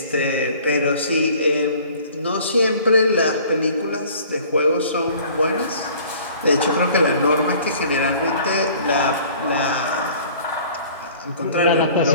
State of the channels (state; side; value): inverted; both; correlation -0.50